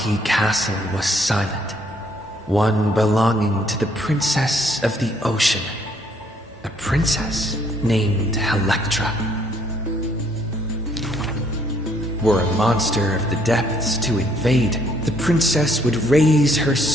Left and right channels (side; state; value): both; normal; correlation 0.66